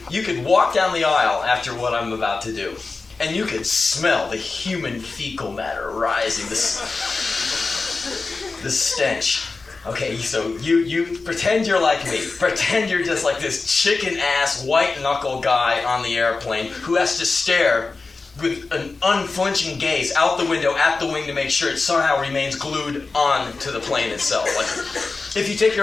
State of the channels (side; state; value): right; quieter; 4.0 dB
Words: could walk down the aisle after what I'm about to do. And you could smell the human fecal matter rising, the stench. Okay, so you pretend you're like me. Pretend you're just like this chicken-ass, white-knuckle guy on the airplane who has to stare with an unflinching gaze out the window at the wing to make sure it somehow remains glued on to the plane itself. If you take